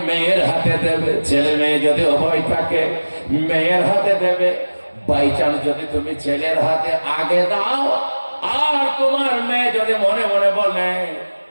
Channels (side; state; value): both; inverted; correlation -1.00